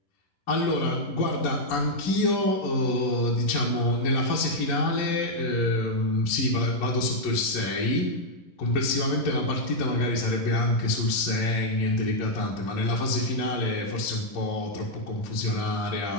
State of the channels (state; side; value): late; right; 11 ms